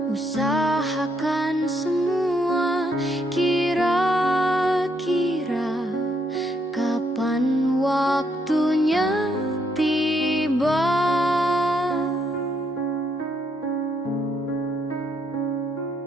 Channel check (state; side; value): normal; both; correlation 0.74